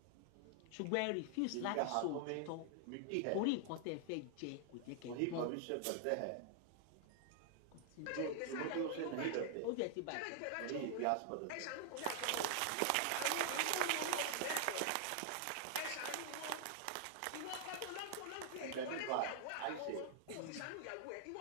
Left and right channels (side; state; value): both; different; correlation 0.00